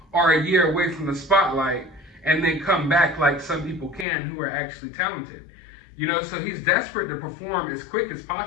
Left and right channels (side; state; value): right; drops out; at 4.0 s